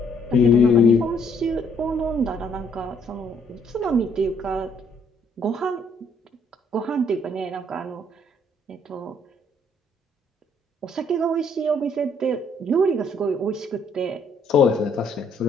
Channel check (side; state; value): both; normal; correlation 0.66